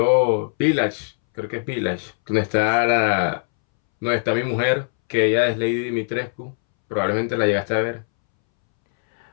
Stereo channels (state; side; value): silent; right; 64 dB below the other